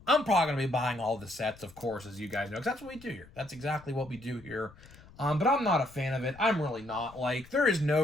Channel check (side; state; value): left; noise; rumble, 22 dB below the sound